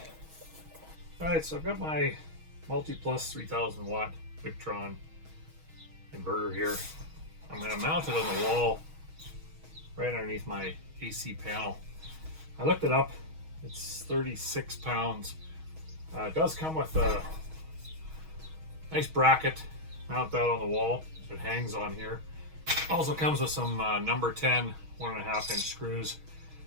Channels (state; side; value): late; left; 6.3 ms